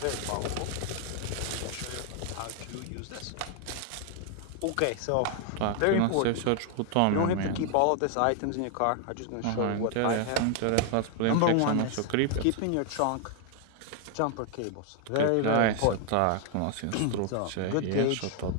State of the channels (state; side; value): different; both; correlation 0.00